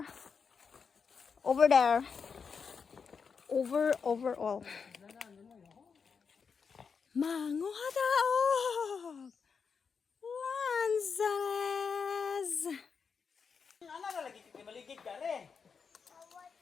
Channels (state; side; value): quieter; right; 5.8 dB